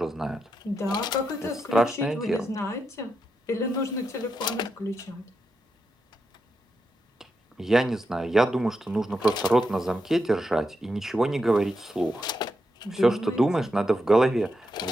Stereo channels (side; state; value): both; normal; correlation 0.85